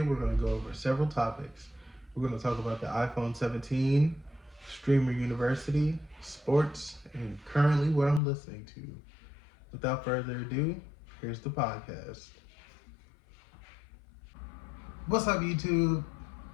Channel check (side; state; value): right; drops out; at 8.2 s